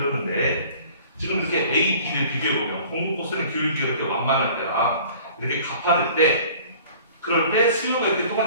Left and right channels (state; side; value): inverted; both; correlation -0.49